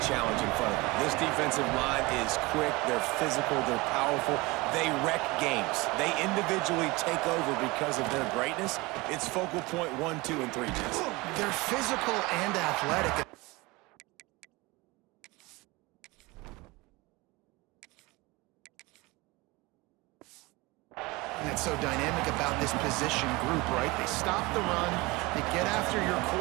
challenge in front of them. This defensive line is quick, they're physical, they're powerful. They wreck games. They individually take over because of their greatness. It's focal point 1, 2, and 3, Jesse. They're physical and athletic. That's so dynamic about this position group, right? They stop the run, they get after your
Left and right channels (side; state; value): left; quieter; 23.2 dB